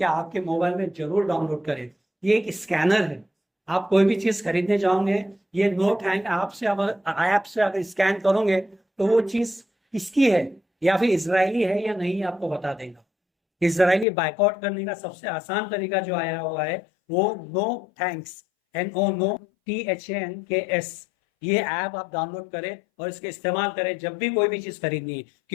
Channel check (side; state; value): right; drops out; at 14.1 s